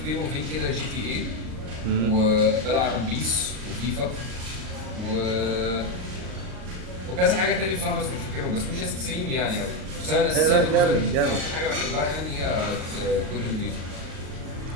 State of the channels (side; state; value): left; late; 38 ms